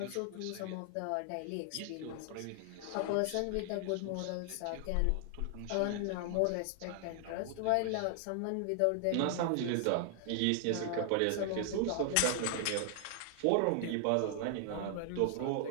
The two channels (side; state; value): both; different; correlation 0.00